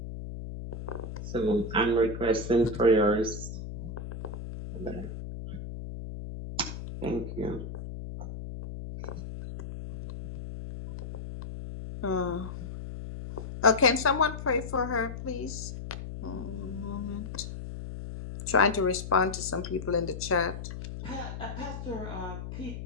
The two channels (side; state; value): left; noise; hum, 8 dB below the sound